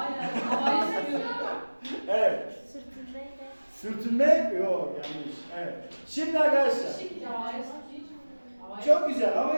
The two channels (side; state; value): both; inverted; correlation -1.00